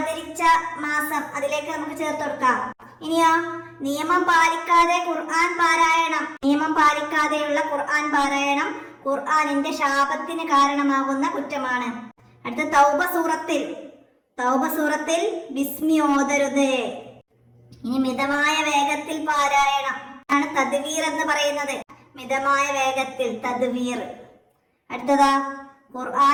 മാസം, അതിലേക്ക് നമുക്ക് ചേർത്ത് കൊടുക്കാം. ഇനിയോ നിയമം പാലിക്കാതെ ഖുർആൻ പാരായണം. നിയമം പാലിക്കാതെയുള്ള ഖുർആൻ പാരായണം ഖുർആനിന്റെ ശാപത്തിന് കാരണമാകുന്ന കുറ്റമാണ്. അടുത്ത തൗബ സൂറത്തിൽ ബിസ്മി ഓതരുത്. ഇനി മിതമായ വേഗത്തിൽ പാരായണം ആണ് തദ്വീർ എന്ന് പറയുന്നത്. മിതമായ വേഗത്തിൽ തദ്വീർ. അടുത്തതാ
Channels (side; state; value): both; identical; correlation 1.00